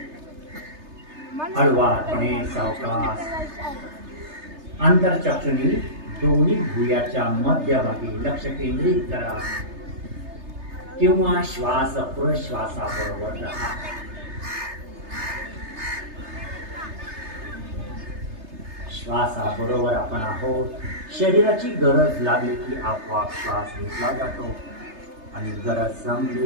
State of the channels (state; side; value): late; left; 3.3 ms